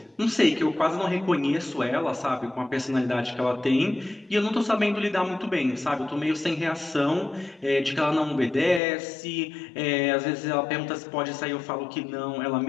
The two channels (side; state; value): right; drops out; at 8.8 s